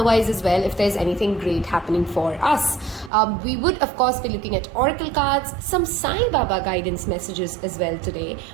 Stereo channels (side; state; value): left; drops out; at 3.1 s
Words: as well, if there's anything great happening for us. We would, of course, be looking at oracle cards, some Sai Baba guidance messages as well today,